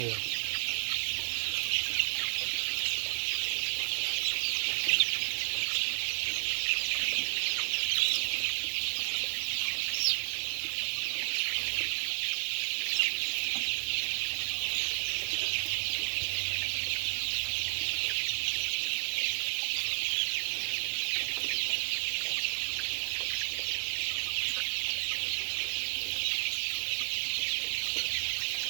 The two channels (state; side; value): silent; left; digital silence